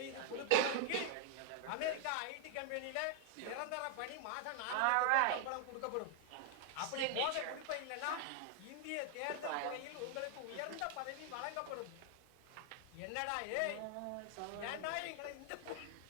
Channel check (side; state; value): both; different; correlation 0.00